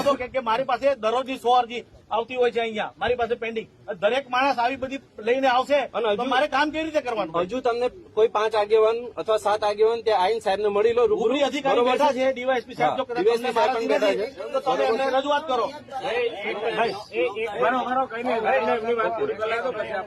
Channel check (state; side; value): identical; both; correlation 1.00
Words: દો. કે મારી પાસે દરરોજની 100 અરજી આવતી હોય છે અહીંયા મારી પાસે પેન્ડિંગ. દરેક માણસ આવી બધી લઈને આવશે અને તો મારે કામ કેવી રીતે કરવાનું? હજુ તમને કોઈ 5 આગેવાન અથવા 7 આગેવાન ત્યાં આઈન સાહેબને મળી લો, ઉપરી અધિકારી બેઠા છે, ડીવાયએસપી સાહેબ જો કદાચ DYSP તમને સાહેબ પણ બેઠા મારાથી નથી, તો તમે એમને રજૂઆત કરો.